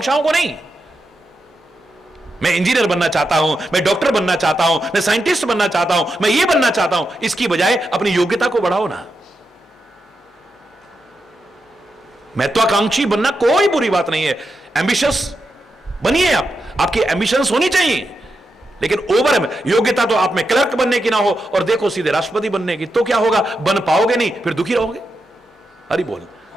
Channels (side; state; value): both; normal; correlation 0.87